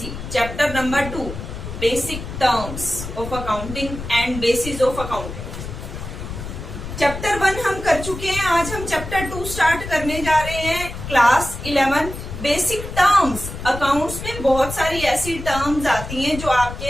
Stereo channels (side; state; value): left; noise; rumble, 9 dB below the sound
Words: Chapter number 2, Basic Terms of Accounting and Basis of Accounting. Chapter 1 हम कर चुके हैं, आज हम Chapter 2 start करने जा रहे हैं. Class 11 Basic Terms. Accounts में बहुत सारी ऐसी terms आती हैं जो